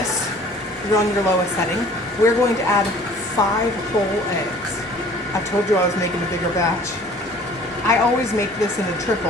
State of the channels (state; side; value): normal; both; correlation 0.50